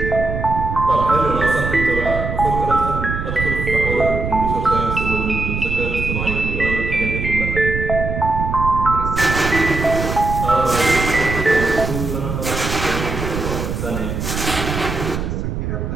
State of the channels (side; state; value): right; noise; rumble, 4 dB below the sound